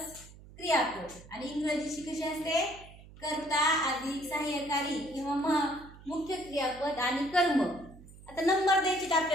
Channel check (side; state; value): right; noise; hum, 20 dB below the sound